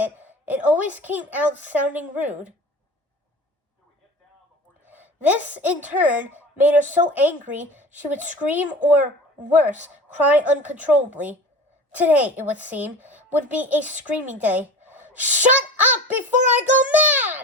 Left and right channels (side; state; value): both; normal; correlation 0.36